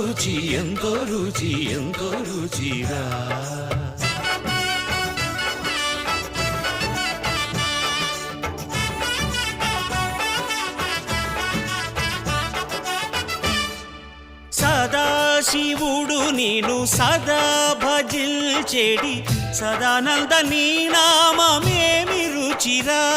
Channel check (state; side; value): identical; both; correlation 1.00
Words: ఎంతో రుచి ఎంతో రుచిరా. సదాశివుడు నేను సదా భజిల్చెడి సదానంద నీ నామమేమి రుచిరా,